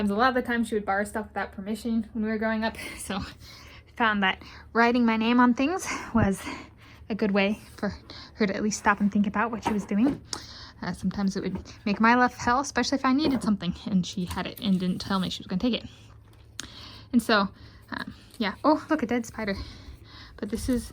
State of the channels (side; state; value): both; identical; correlation 1.00